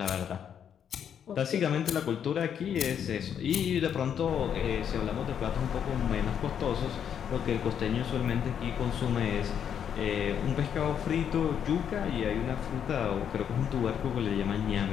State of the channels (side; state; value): right; quieter; 8.5 dB